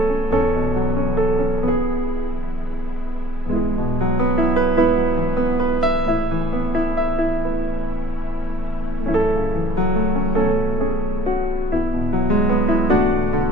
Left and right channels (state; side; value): normal; both; correlation 0.51